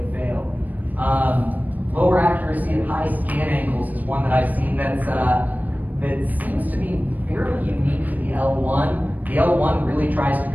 failed. Lower accuracy at high scan angles is one that I've seen that seems to be fairly unique to the L1. The L1 really tries to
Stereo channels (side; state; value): left; late; 0.081 ms